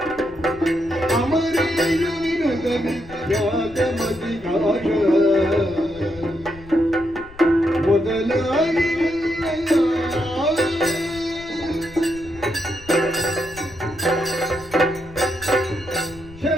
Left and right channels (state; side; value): noise; left; rumble, 20 dB below the sound